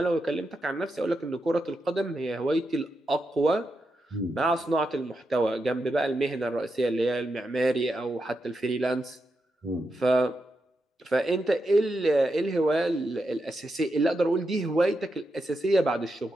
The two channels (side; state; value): both; normal; correlation 0.86